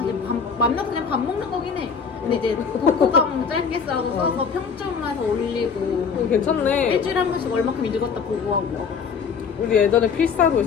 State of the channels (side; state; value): right; quieter; 6.0 dB